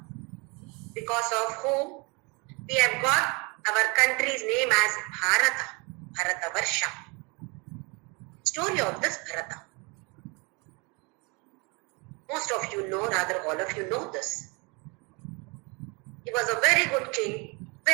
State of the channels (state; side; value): quieter; left; 29.5 dB